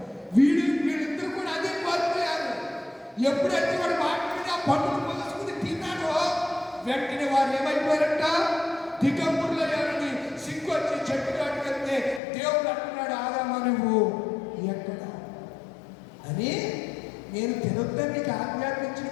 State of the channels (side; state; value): right; drops out; at 12.2 s